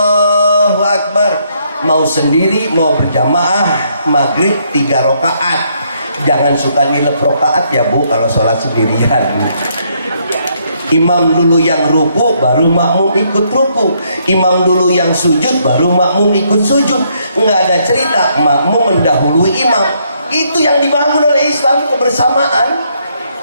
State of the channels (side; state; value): both; inverted; correlation -0.72